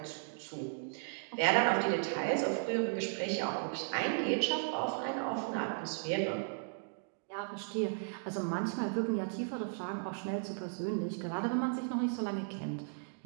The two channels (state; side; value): silent; left; digital silence